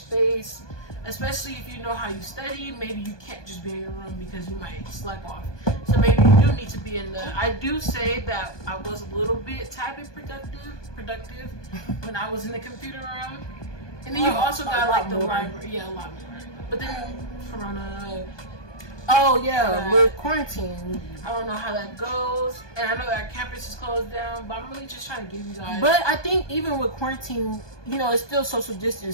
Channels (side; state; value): right; late; 1.2 ms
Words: especially if you know how you study. Maybe you can't just be in your room because you might slack off. So maybe you do need to be in I do say that I was a little bit productive when I was in the computer room. And then you also got the library. Yeah, a lot more. But then Corona. Oh yeah, with quarantine. I don't know how that goes, and I know our campus is closed down, but I'm really just trying to give you guys. But I think even with quarantine, it's still social